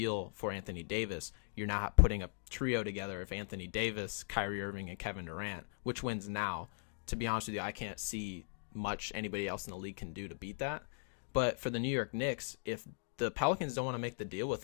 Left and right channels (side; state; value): right; silent; digital silence